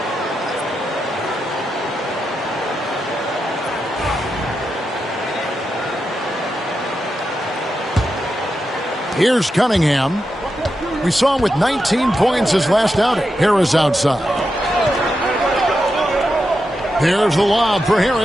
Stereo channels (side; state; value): both; normal; correlation 0.87